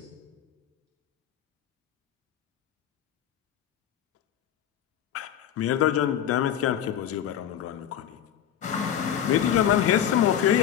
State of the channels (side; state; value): right; quieter; 10.0 dB